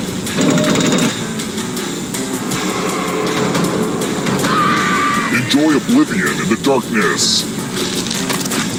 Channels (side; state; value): both; identical; correlation 1.00